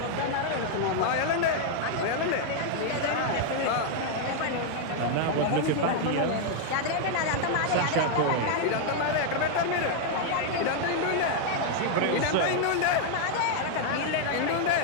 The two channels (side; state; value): both; different; correlation 0.00